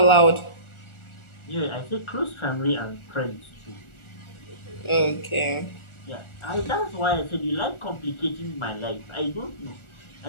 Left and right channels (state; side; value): late; right; 1.4 ms